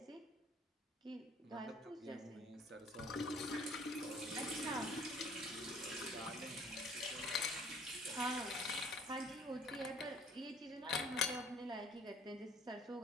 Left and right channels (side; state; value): both; normal; correlation 0.56